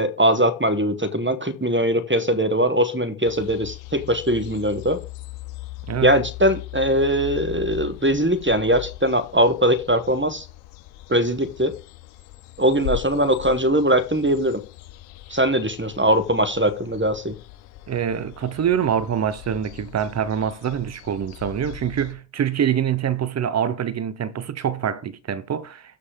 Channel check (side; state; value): both; normal; correlation 0.00